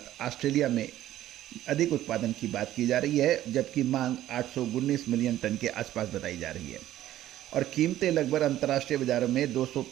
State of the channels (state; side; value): quieter; left; 13.4 dB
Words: ऑस्ट्रेलिया में अधिक उत्पादन की बात की जा रही है, जबकि मांग 819 मिलियन टन के आसपास बताई जा रही है और कीमतें लगभग अंतर्राष्ट्रीय बाजारों में